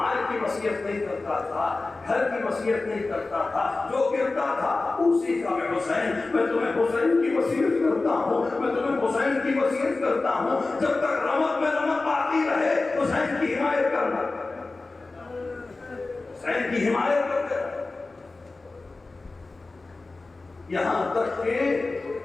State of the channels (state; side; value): quieter; right; 3.5 dB